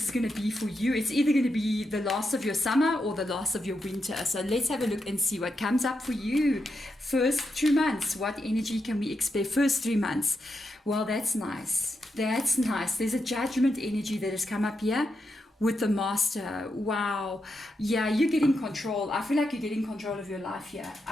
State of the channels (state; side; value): normal; both; correlation 0.85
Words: is going to be for you, it's either going to be the last of your summer or the last of your winter. So let's have a look and see what comes up for you. First 2 months, what energy can we expect? First 3 months. Well, that's nice. That's nice. There's a judgment energy that has come up here with the master. Wow. Yeah, you're getting control. I feel like you're getting control of your life here.